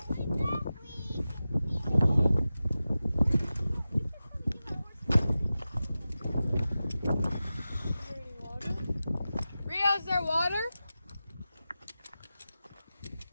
Rio, is there water?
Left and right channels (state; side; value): inverted; both; correlation -0.94